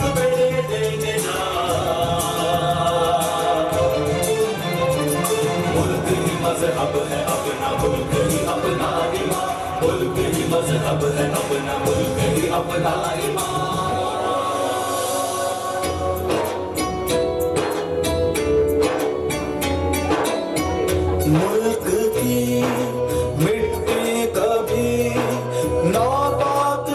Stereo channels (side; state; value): both; identical; correlation 1.00